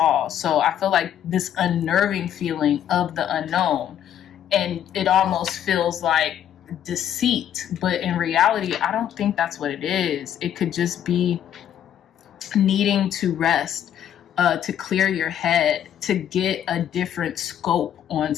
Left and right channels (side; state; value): right; quieter; 10.1 dB